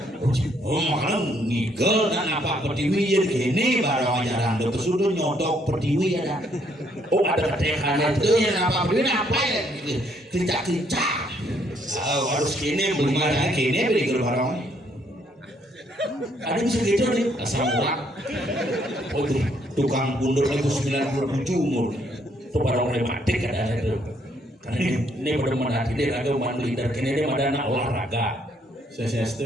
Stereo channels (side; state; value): both; normal; correlation 0.69